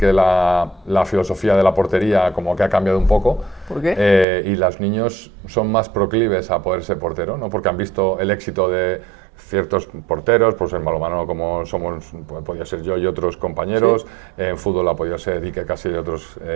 la filosofía de la portería como que ha cambiado un poco. ¿Por qué? Y los niños son más proclives a poder ser portero, ¿no? Porque han visto el éxito de ciertos porteros, pues en balonmano como somos, podía ser yo y otros compañeros, sí. En fútbol ha podido ser Iker Casillas y otros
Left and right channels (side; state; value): left; drops out; at 4.2 s